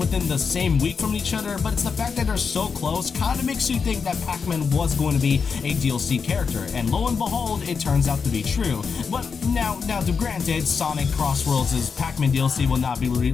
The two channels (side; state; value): right; quieter; 5.7 dB